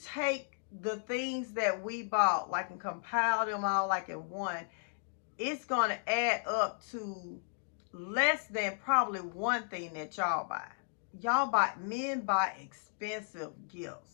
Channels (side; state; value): right; silent; digital silence